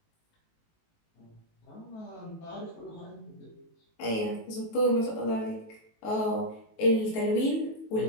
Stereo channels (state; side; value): late; right; 18 ms